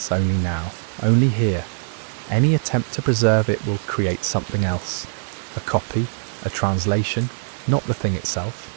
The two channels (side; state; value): left; silent; digital silence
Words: only now, only here. Any attempt to preserve it will create something else. A copy, a translation, not the thing itself.